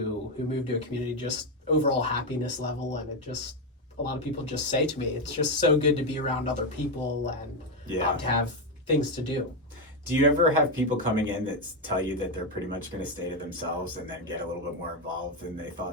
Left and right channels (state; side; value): normal; both; correlation 0.07